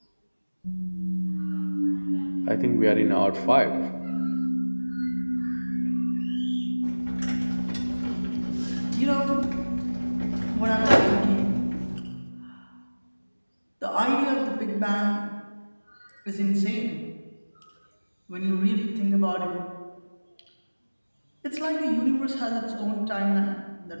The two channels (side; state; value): both; inverted; correlation -1.00